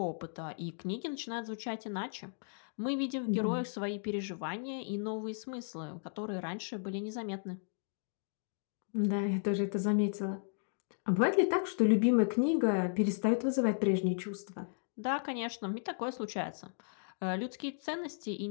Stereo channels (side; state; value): right; silent; digital silence